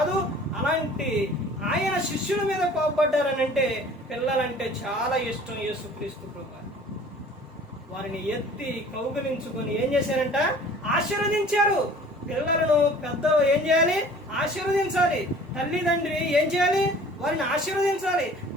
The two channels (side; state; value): both; normal; correlation 0.48